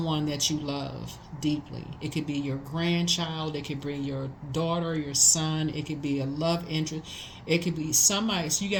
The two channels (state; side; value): identical; both; correlation 1.00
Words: that you love deeply. It could be your grandchild. It could be your daughter, your son. It could be a love interest. It could be somebody. So you